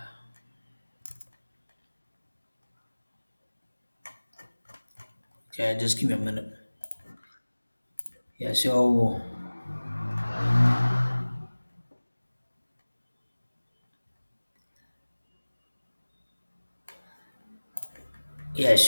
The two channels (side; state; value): both; inverted; correlation -1.00